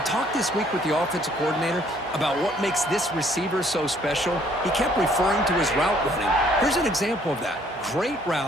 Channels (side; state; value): right; noise; hum, 20 dB below the sound